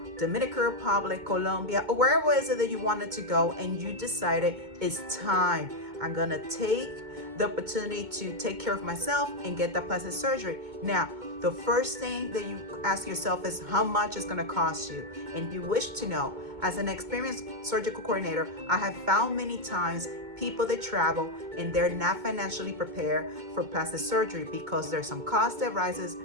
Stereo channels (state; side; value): late; left; 2.2 ms